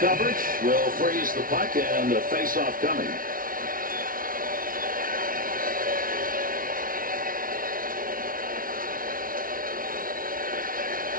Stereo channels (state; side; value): late; left; 0.41 ms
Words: will freeze the puck and the face-off coming.